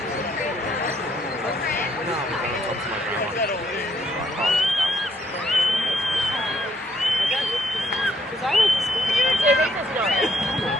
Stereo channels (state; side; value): normal; both; correlation 0.70